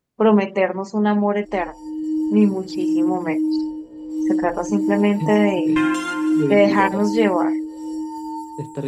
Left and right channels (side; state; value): both; identical; correlation 1.00